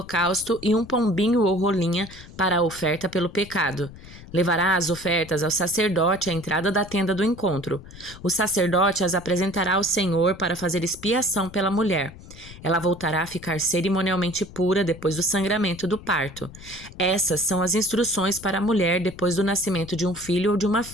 e um pombinho ou rolinha para a oferta pelo pecado. Levará as ofertas ao sacerdote à entrada da tenda do encontro. O sacerdote as apresentará ao Senhor para fazer expiação pela mulher. Ela voltará a ficar cerimonialmente pura depois do sangramento do parto. Essas são as instruções para a mulher depois do nascimento de um filho ou de uma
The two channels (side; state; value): left; noise; rumble, 17 dB below the sound